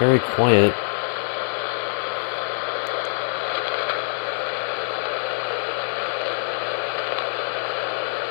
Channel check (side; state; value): right; silent; digital silence